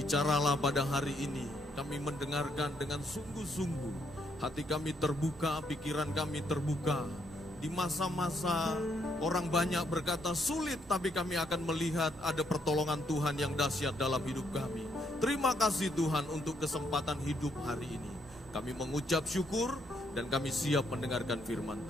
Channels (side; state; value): both; normal; correlation 0.73